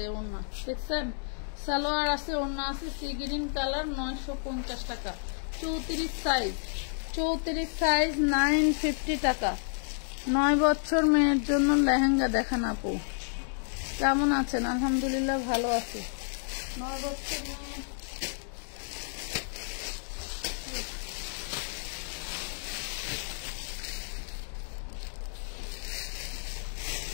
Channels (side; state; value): right; silent; digital silence